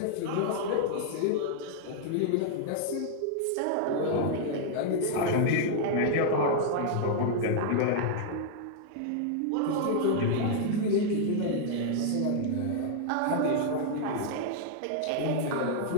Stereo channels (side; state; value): both; different; correlation -0.01